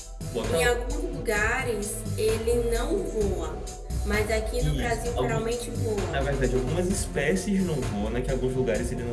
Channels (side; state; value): both; identical; correlation 1.00